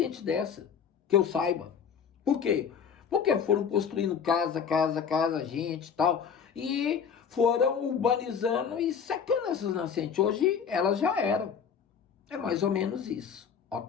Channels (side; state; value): right; quieter; 7.0 dB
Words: dessa, que eu saiba. Por quê? Porque foram construindo casa, gente e tal, e foram urbanizando e secando essas nascentes. Hoje, elas já eram. É mais ou menos isso,